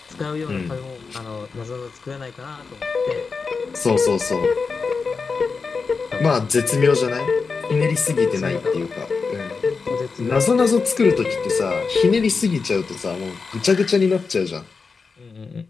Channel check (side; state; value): right; quieter; 4.8 dB